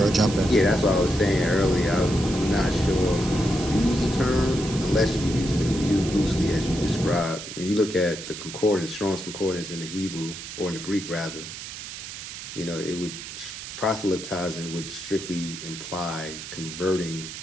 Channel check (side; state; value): right; noise; hiss, 10 dB below the sound